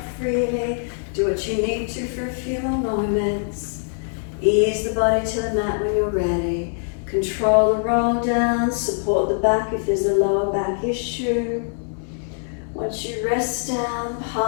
freely, do what you need to for a few more moments. Ease the body to the mat when you're ready. Control the roll down, support the back if there's a lower back issue. Once you rest down,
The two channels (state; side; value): silent; right; digital silence